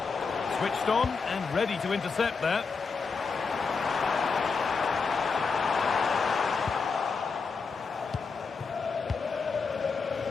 Switched on and ready to intercept that.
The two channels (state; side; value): quieter; right; 4.9 dB